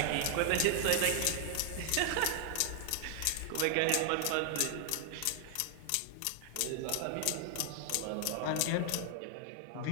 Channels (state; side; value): different; both; correlation 0.00